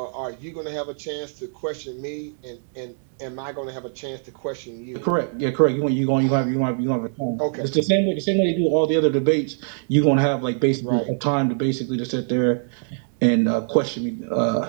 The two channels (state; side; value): silent; left; digital silence